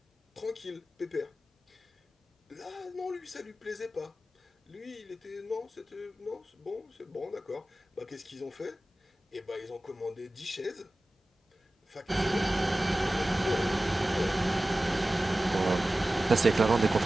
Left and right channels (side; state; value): both; normal; correlation 0.96